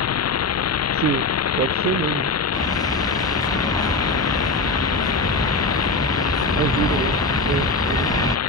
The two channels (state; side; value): quieter; right; 3.3 dB